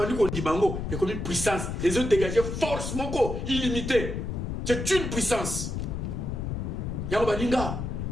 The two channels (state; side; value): noise; left; rumble, 4 dB below the sound